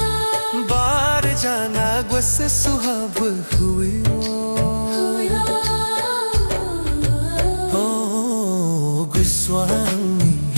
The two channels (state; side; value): inverted; both; correlation -1.00